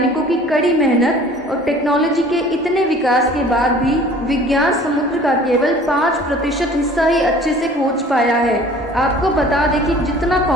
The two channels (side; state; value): both; normal; correlation 0.48